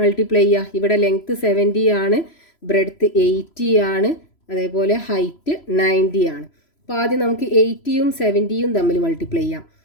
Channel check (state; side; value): late; right; 3.0 ms